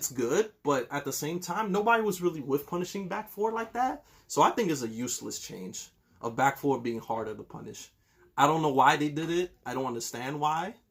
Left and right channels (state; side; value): identical; both; correlation 1.00